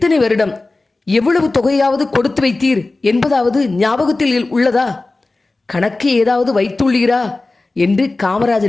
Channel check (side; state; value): right; quieter; 3.2 dB